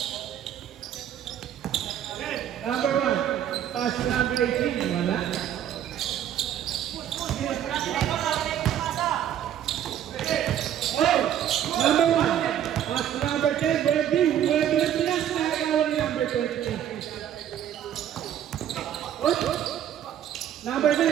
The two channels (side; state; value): left; quieter; 10.5 dB